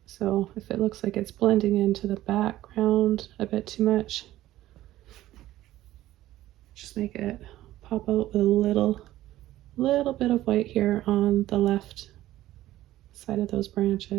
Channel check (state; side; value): quieter; left; 14.8 dB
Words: So if it looks like it's blending into the background a bit too much, just make it pop out with a little bit of white here on the left side of those